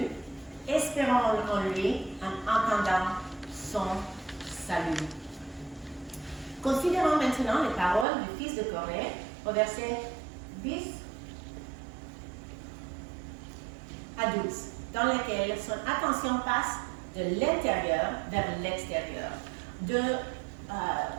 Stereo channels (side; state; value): left; drops out; at 8.1 s